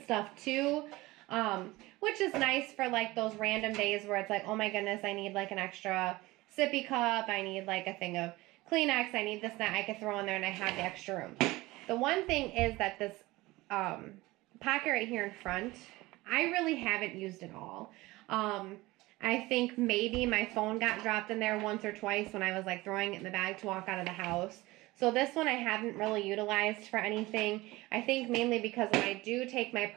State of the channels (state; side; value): quieter; left; 20.1 dB